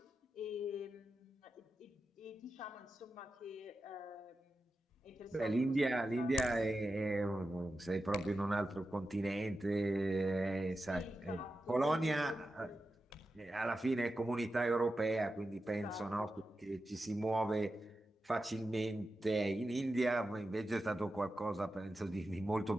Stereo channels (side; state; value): both; normal; correlation 0.91